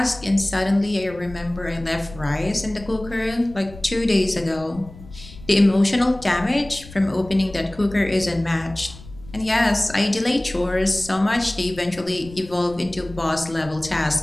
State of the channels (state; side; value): noise; left; rumble, 18 dB below the sound